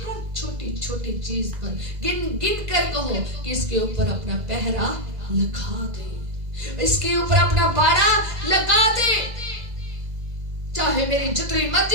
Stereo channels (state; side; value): late; left; 2.0 ms